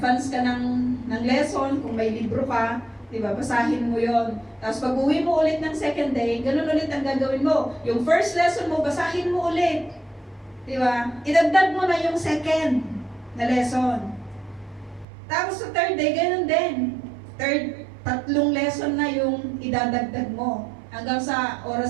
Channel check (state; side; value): drops out; left; at 15.1 s